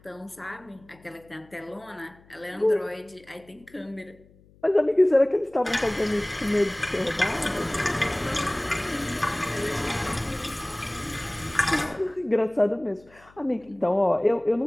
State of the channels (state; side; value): noise; left; hum, 28 dB below the sound